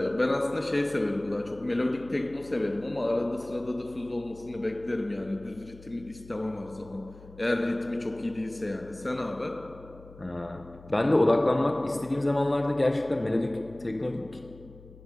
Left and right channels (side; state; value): left; noise; hum, 20 dB below the sound